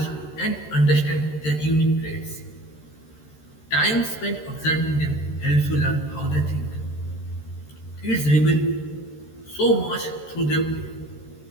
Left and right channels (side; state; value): right; late; 13 ms